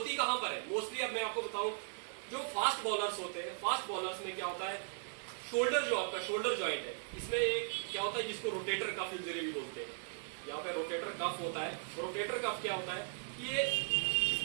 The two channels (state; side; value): silent; left; 53 dB below the other